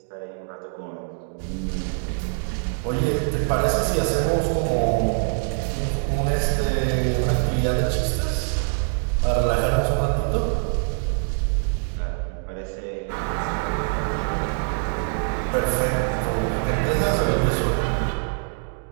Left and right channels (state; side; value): silent; left; 63 dB below the other